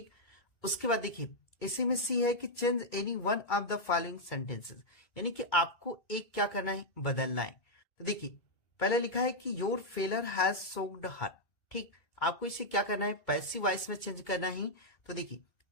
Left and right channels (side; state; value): right; late; 2.3 ms